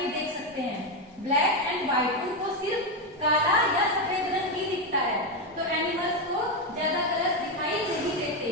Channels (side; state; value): both; normal; correlation 0.08